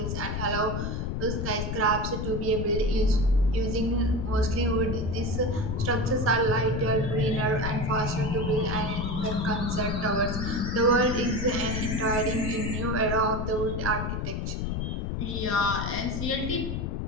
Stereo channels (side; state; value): left; noise; rumble, 2 dB below the sound